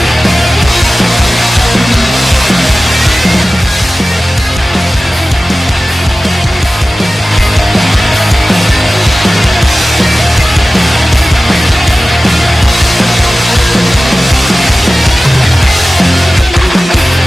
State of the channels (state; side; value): normal; both; correlation 0.96